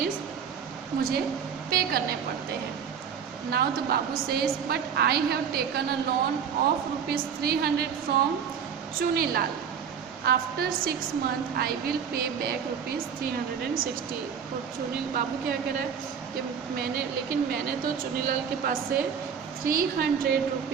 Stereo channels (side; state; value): left; quieter; 7.4 dB